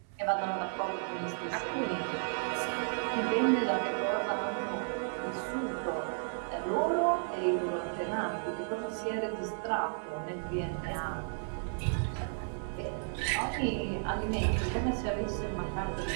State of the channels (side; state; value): left; silent; 56 dB below the other